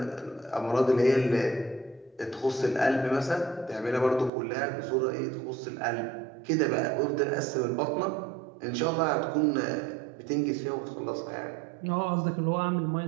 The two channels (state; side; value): drops out; left; at 4.3 s